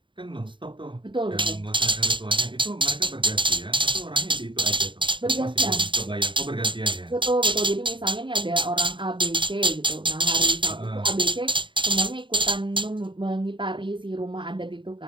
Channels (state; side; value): late; left; 0.24 ms